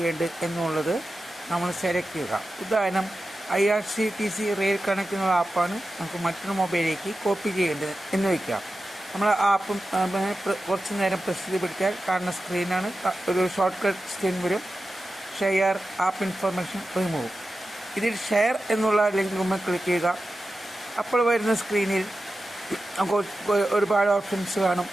എന്നുള്ളത് നമ്മൾ സെലക്ട് ചെയ്യുക. ഉദാഹരണം IRCTC റെയിൽ കണക്ട് എന്നുള്ള ആപ്പാണ് നമുക്ക് മറ്റൊരു മൊബൈലിലേക്ക് കോപ്പി ചെയ്യേണ്ടത് എന്ന് വയ്ക്കാം. നമ്മൾ ആപ്പ് കുറച്ച് നേരം പ്രസ് ചെയ്ത് പിടിച്ചാൽ കാണുന്ന സ്ക്രീനാണ്. ഒരു ഷോർട്ട് കട്ട് സ്ക്രീൻ വരും. Share app information remove. ഇതിൽ ഷെയർ എന്നുള്ള ലിങ്ക് നമ്മൾ ക്ലിക്ക് ചെയ്യുക. അപ്പോൾ വരുന്ന സ്ക്രീനിൽ നമുക്ക് ഒരുപാട് ഓപ്ഷൻസ് കാണും.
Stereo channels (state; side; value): normal; both; correlation 0.93